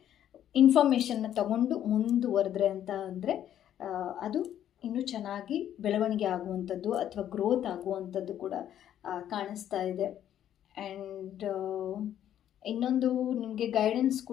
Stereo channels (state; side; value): quieter; right; 10.8 dB